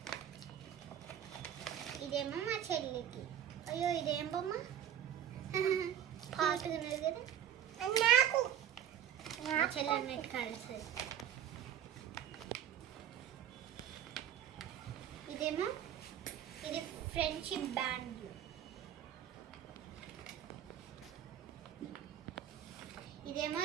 ఇదేమో మా చెల్లికి. అయ్యో ఇదేం బొమ్మ పాటుకున్నది కదా, నాకు చెల్లి అన్నట్టు కలిసి. ఇదేమో ఇది ఫ్రెండ్షిప్ బ్యాండ్. ఇదేమో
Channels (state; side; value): quieter; left; 10.2 dB